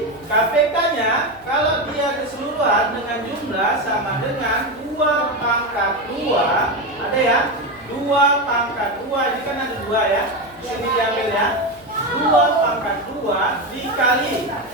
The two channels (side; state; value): left; noise; hum, 26 dB below the sound